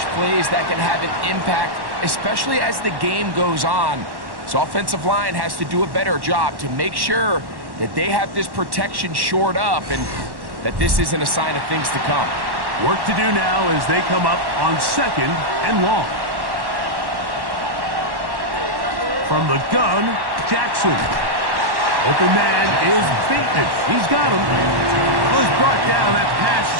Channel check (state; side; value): late; left; 1.1 ms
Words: plays that can have an impact, especially as the game goes on. So offensive line has to do a better job to make sure that they have this protection shored up and that this isn't a sign of things to come. Work to do now as they come up on 2nd and long. From the gun, Jackson. Open man is Bateman. He's got him. Well, he's brought down. That pass